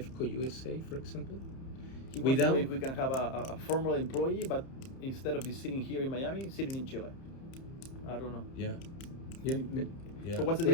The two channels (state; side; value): late; right; 30 ms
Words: USA, for example. He wants to know Without- if we can have a former employee, but instead of sitting here in Miami, sitting in Chile. I don't know. Yeah. Yeah. Yeah. So what's the